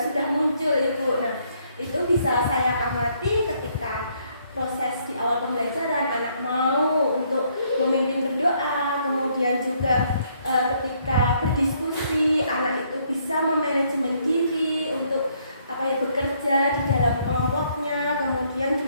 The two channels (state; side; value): inverted; both; correlation -0.69